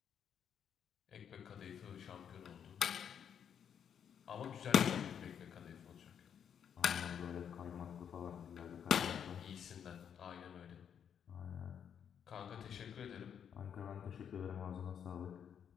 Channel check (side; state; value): right; quieter; 8.2 dB